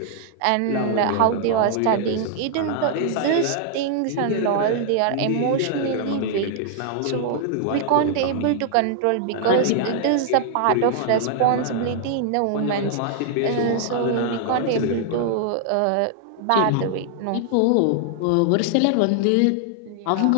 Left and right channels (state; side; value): different; both; correlation 0.00